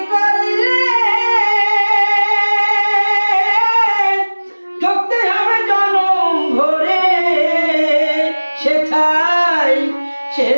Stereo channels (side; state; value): both; inverted; correlation -1.00